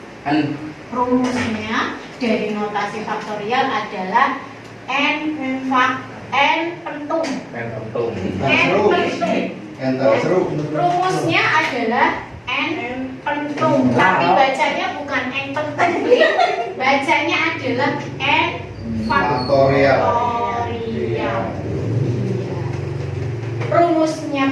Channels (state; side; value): identical; both; correlation 1.00